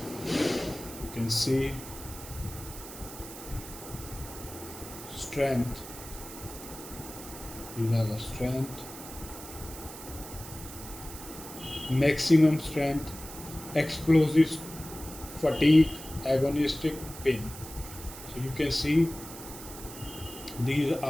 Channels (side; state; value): right; noise; hiss, 13 dB below the sound